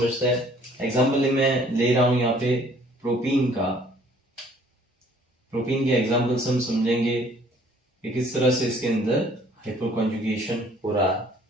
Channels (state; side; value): normal; both; correlation 0.58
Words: हैं। एग्जाम्पल मैं ले रहा हूं यहाँ पे प्रोपीन का, प्रोपीन के एग्जाम्पल्स हम समझेंगे कि किस तरह से इसके अंदर हाइपर कॉन्जुगेशन हो रहा है।